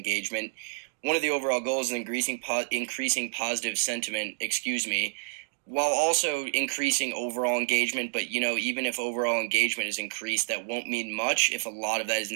One of the overall goals is increasing positive sentiment, while also increasing overall engagement. But, even if overall engagement is increased, that won't mean much if a lot of that is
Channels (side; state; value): left; silent; digital silence